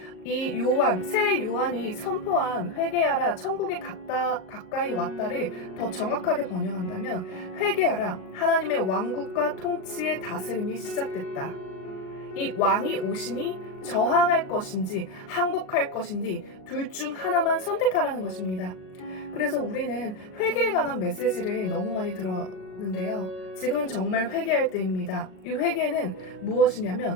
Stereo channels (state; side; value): late; right; 38 ms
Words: 이 세례 요한이 선포한 회개하라, 천국이 가까이 왔다를 더 정확하게 번역한다면 회개하라, 하나님의 왕국과 통치의 다스림이 시작됐다. 이 왕이 오시니 저항할 것인지 항복할 것인지 둘 중 하나만 선택하라는 것입니다. 그래서 우리는 회개에 관한 메시지를 너무 많이 들었는데요. 지금은 정말 회개할 때입니다. 이 회개는